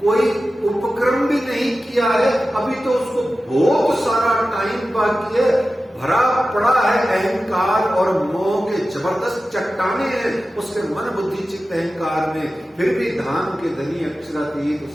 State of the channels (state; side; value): normal; both; correlation 0.94